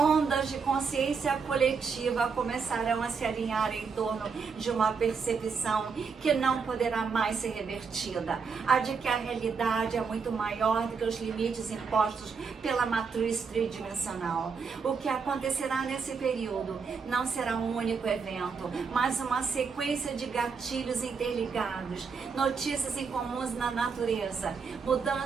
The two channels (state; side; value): quieter; left; 5.5 dB